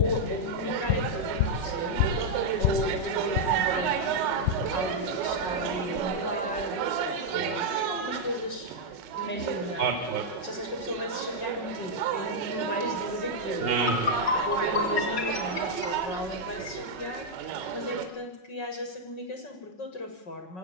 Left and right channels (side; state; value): right; late; 5.4 ms